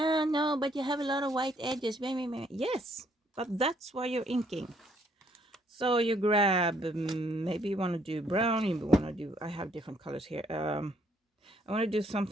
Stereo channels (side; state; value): both; normal; correlation 0.67